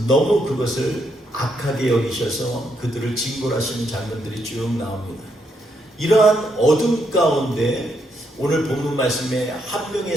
너무 그것을 악하게 여기셔서 그들을 징벌하시는 장면들이 쭉 나옵니다. 이러한 어둠 가운데 오늘 본문 말씀에 한 명의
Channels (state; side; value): normal; both; correlation 0.77